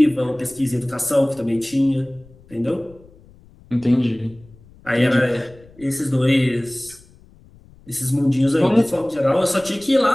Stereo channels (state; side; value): noise; left; rumble, 26 dB below the sound